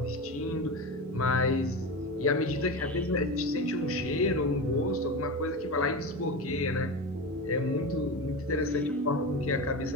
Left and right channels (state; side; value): normal; both; correlation 0.23